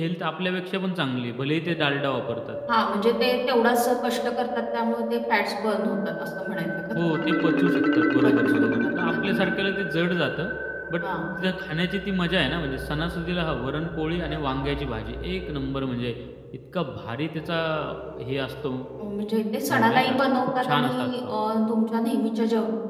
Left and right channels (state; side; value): identical; both; correlation 1.00